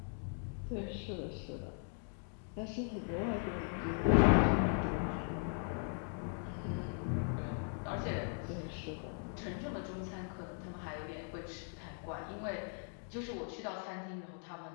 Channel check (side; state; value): right; silent; 52 dB below the other